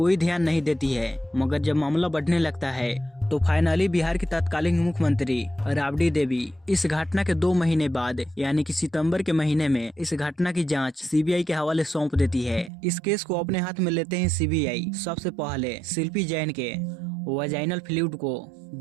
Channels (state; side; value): drops out; left; at 12.7 s